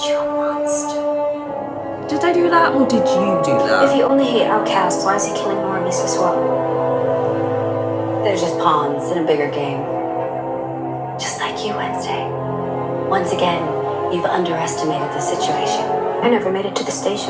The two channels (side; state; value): both; identical; correlation 1.00